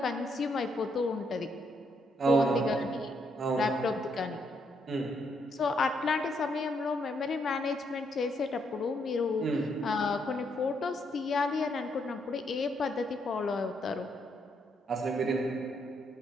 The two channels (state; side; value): normal; both; correlation 0.75